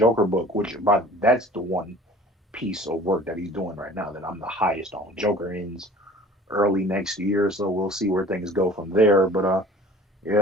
book, that's the one piece of work that he's doing right now that I'm the highest on. Joker ends early next year, so we'll see where things go from there. But yeah,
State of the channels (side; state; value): both; normal; correlation 0.46